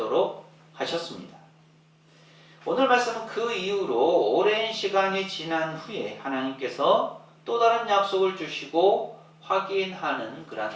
하셨습니다. 오늘 말씀은 그 이후로 오랜 시간이 지난 후에 하나님께서 또 다른 약속을 주시고 확인하는 그런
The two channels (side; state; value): both; identical; correlation 1.00